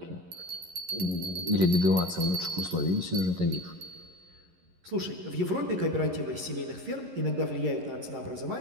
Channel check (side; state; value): left; late; 11 ms